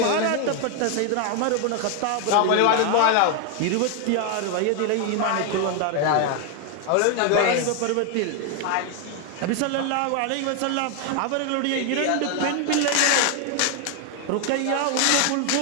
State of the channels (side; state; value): both; different; correlation 0.01